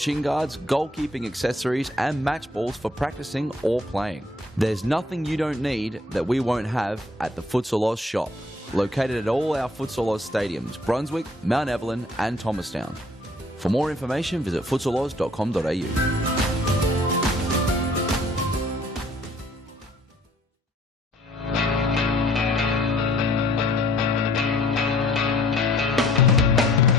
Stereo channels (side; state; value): both; normal; correlation 0.58